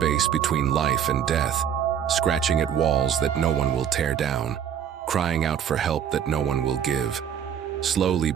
between life and death, scratching at walls that no one will tear down, crying out for help that no one will give, slowly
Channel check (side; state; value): left; quieter; 8.8 dB